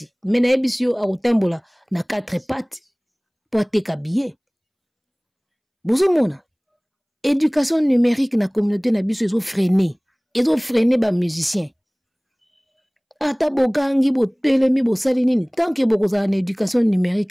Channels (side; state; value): both; identical; correlation 1.00